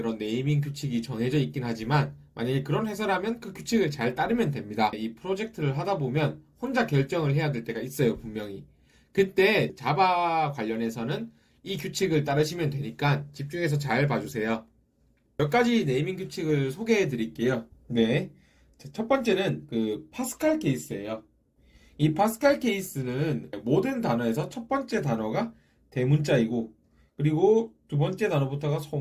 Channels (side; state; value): both; identical; correlation 1.00